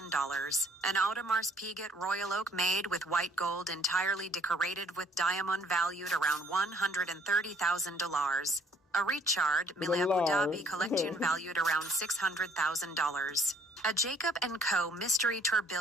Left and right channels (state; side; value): normal; both; correlation 0.61